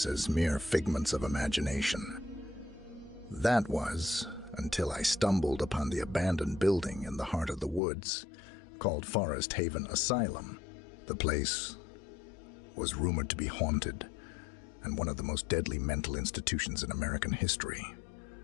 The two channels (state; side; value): drops out; right; at 7.8 s